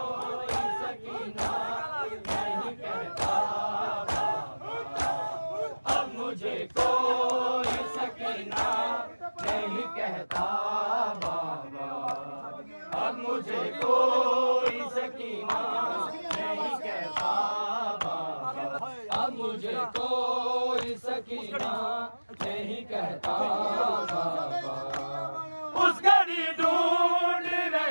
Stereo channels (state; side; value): inverted; both; correlation -1.00